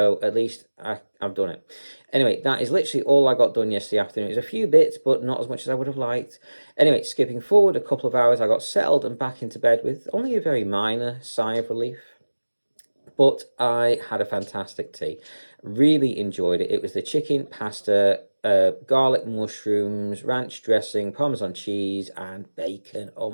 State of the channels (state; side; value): inverted; both; correlation -1.00